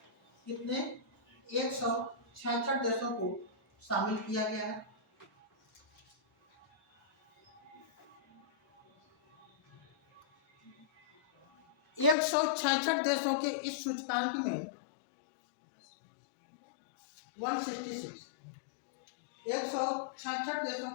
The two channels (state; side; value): drops out; right; at 12.2 s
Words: कितने, 166 देशों को शामिल किया गया है। एक 166 देशों के इस सूचकांक में 166 166 देशों